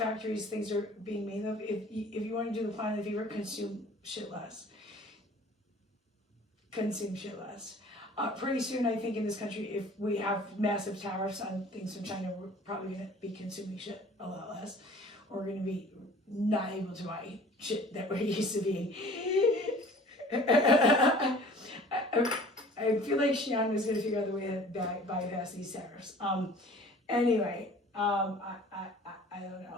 things are being made of. If you want to do the planet favor, consume shit less. Consume shit less. Pretty soon, I think in this country, if we have massive tariffs on things from China, we're probably going to be consuming shit a lot less. We're going to be not able to buy shit that we're used to being. I feel like Xi'an is going to figure out the way to bypass these tariffs. Anyway, I don't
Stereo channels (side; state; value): both; normal; correlation 0.48